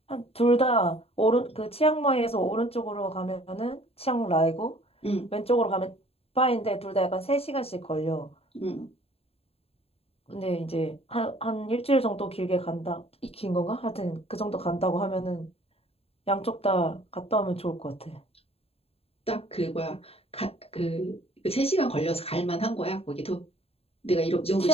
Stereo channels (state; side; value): late; right; 0.29 ms